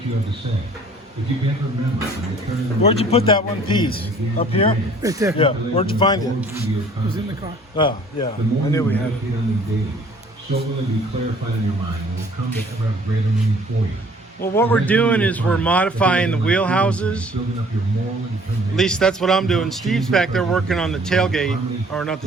you have to say. If you can't remember, Where'd you put that one piece? Up here? Right there. Yeah. Where'd you find it? It was in the car. Oh, yeah. I knew we had it. So will it be clarified in your mind and will come to ever have greater meaning for you. Well, what we're doing is we're modifying the wheelhouses. At least that's what I'm doing. Steve's back there working on the tailgate, or not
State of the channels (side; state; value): both; normal; correlation 0.55